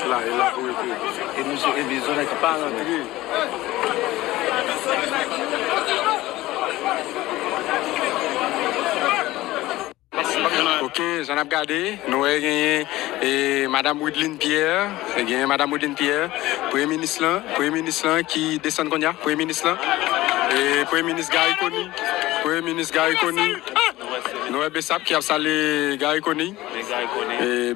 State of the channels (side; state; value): right; quieter; 17.4 dB